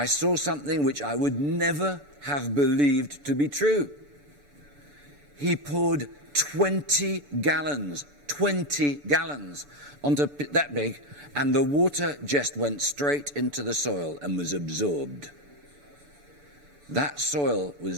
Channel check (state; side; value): late; left; 6.9 ms